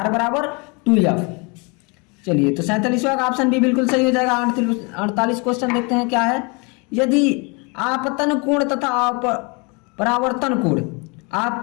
बराबर 2f। चलिए तो 47वां का ऑप्शन भी बिल्कुल सही हो जाएगा। 48 क्वेश्चन देखते हैं क्या है, यदि आपतन कोण तथा परावर्तन कोण,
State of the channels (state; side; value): quieter; right; 30.7 dB